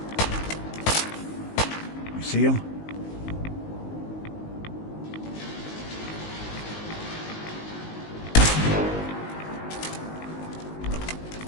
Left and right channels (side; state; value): right; late; 19 ms